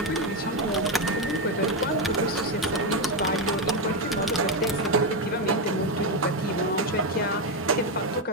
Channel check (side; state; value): both; normal; correlation 0.07